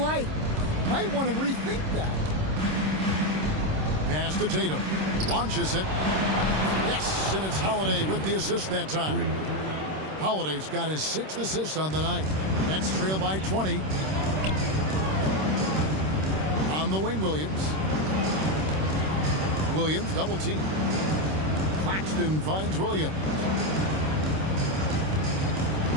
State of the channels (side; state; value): left; late; 26 ms